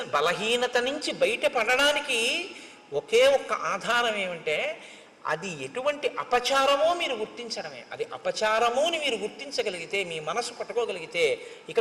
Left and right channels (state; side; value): identical; both; correlation 1.00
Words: బలహీనత నుంచి బయటపడడానికి ఒకే ఒక్క ఆధారం ఏమంటే అది ఎటువంటి అపచారమో మీరు గుర్తించడమే. అది అపచారము అని మీరు గుర్తించగలిగితే, మీ మనసు పట్టుకోగలిగితే ఇక